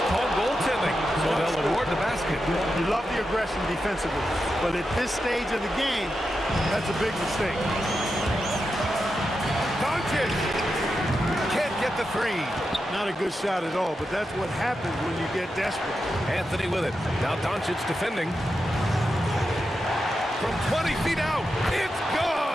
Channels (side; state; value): both; normal; correlation 0.88